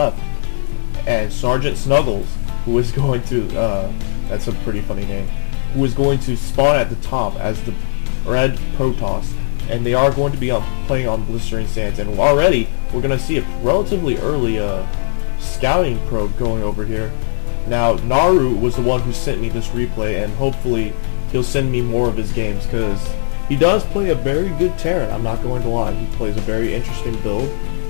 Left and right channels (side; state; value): right; silent; digital silence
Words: and SgtSnuggles, who is going to, that's a pretty funny name, who is going to spawn at the top as the red Protoss. And they are going to be playing on Blistering Sands, and already we're going to see a relatively early scouting probe going over here. Now NarU was the one who sent me this replay, and hopefully he'll send me more of his games, because he does play a very good Terran. I'm not going to lie, he plays a very interesting build,